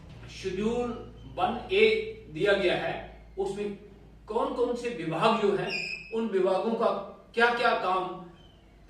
शेड्यूल 1A दिया गया है उसमें कौन कौन से विभाग जो हैं उन विभागों का क्या क्या काम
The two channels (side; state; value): both; identical; correlation 1.00